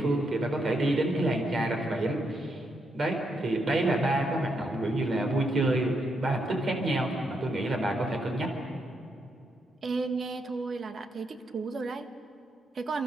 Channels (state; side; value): normal; both; correlation 0.80